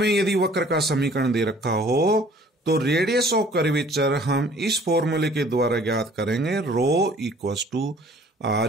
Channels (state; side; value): normal; both; correlation 0.54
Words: यदि वक्र का समीकरण दे रखा हो तो रेडियस ऑफ कर्वेचर हम इस फॉर्मूले के द्वारा ज्ञात करेंगे, rho equals to